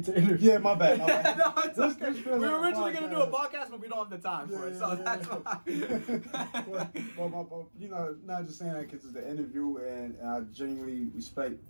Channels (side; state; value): both; inverted; correlation -1.00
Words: an interview. Yeah, my bad. No, it's okay. This We were like originally going to do a podcast, but we don't have the time for it, so that's why. Well, not just saying that because it's the interview, and I genuinely respect